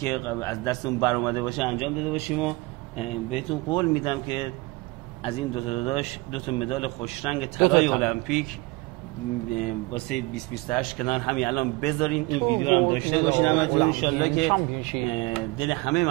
از دستمون برآمده باشه انجام داده باشیم و بهتون قول میدم که از این دو تا داداش 2 مدال خوشرنگ طلای المپیک واسه 2028 کنار همین الان بذارین. این ویدیو رو هم داشته باشین همتون ان شاءالله که دل همه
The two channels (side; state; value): left; quieter; 23.9 dB